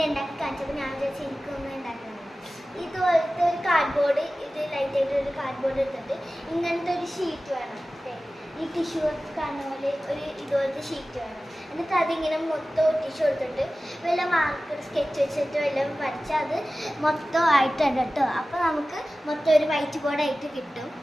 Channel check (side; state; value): both; normal; correlation 0.96